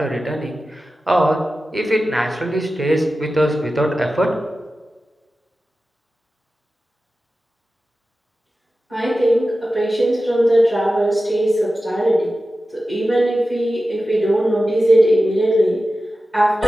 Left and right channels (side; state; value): both; normal; correlation 0.94